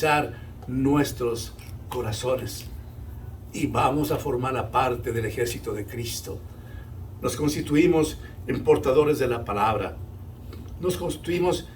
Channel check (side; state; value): both; identical; correlation 1.00